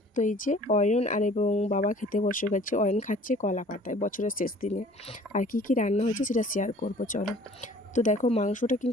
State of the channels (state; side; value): normal; both; correlation 0.51